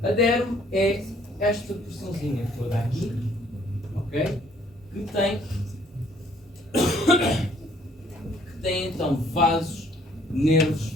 A derme é esta porçãozinha toda aqui, ok? Que tem então vasos, nervos,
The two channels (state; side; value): normal; both; correlation 0.62